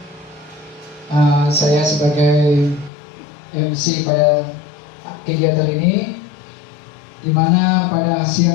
saya sebagai MC pada kegiatan ini, di mana pada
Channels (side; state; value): right; drops out; at 2.9 s